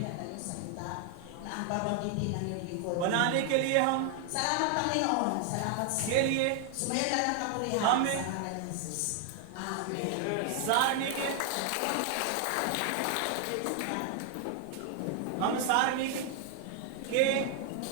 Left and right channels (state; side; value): different; both; correlation 0.00